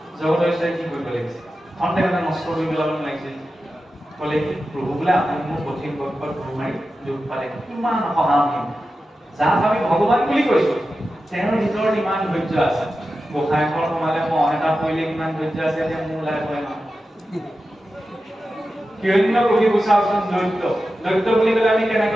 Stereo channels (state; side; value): normal; both; correlation 0.92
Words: জগতৰ ঈশ্বৰে কি কৰিব লাগিছে? খন্তে মানে নষ্ট কৰি পেলাব লাগিছিল। ক'লে কি প্ৰভু বোলে আপুনি মোৰ কঠিন বক্ষত গুৰ মাৰি দুখ পালে, কিমান সহানুভূতি। যাক আমি ভগৱান বুলি কৈছো, তেওঁৰ ভিতৰত ইমান ধৈৰ্য আছে। গোসাঁই ঘৰ সোমালে মহ এটা পৰিলে কিমান ধৈৰ্য আছে, এতিয়া মোৰ ওলাই পৰে নহয়। হিৰণ্য কশিপু চাওকচোন, দৈত্য বুলি ক'লে আমি